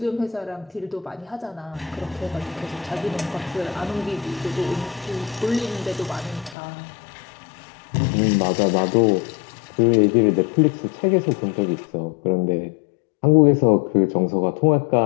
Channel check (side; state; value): right; drops out; at 6.6 s